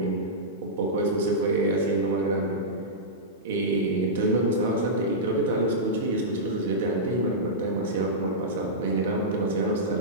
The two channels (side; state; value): both; normal; correlation -0.13